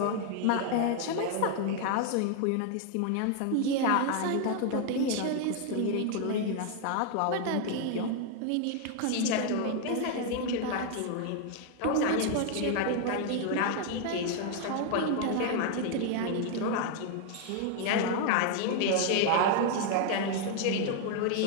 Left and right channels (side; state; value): both; different; correlation 0.00